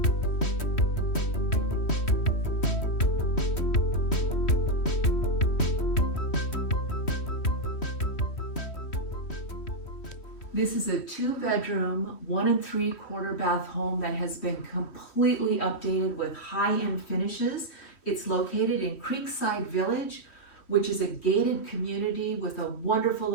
This is a 2-bedroom, 1 3/4 bath home that has been completely updated with high-end finishes. It's located in Creekside Village, which is a gated community with a wonderful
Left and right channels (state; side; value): late; right; 3.1 ms